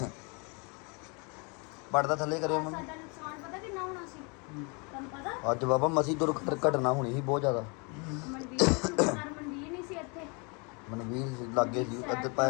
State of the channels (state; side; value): quieter; right; 32.4 dB